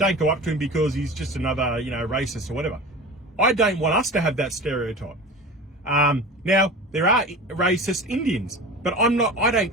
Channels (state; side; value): normal; both; correlation 0.33